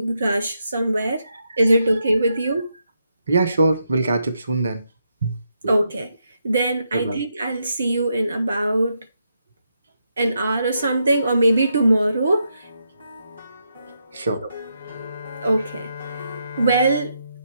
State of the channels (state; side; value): inverted; both; correlation -0.81